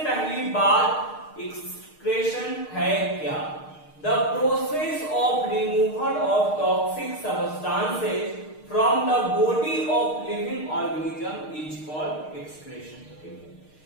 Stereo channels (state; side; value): late; right; 6.5 ms